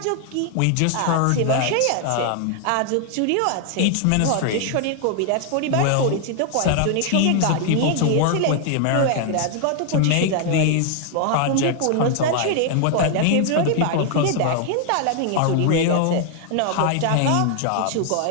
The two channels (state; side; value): different; both; correlation 0.00